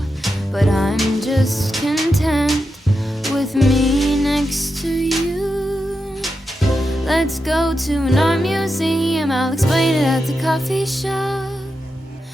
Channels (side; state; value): both; normal; correlation 0.88